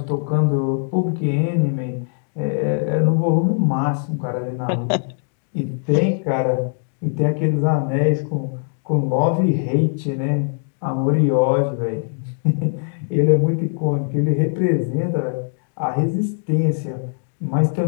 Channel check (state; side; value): silent; right; digital silence